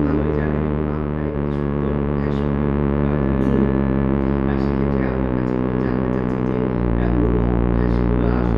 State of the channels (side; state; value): left; noise; rumble, 15 dB below the sound